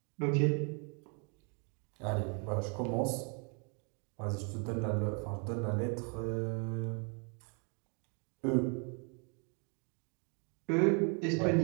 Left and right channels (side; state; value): left; quieter; 37.3 dB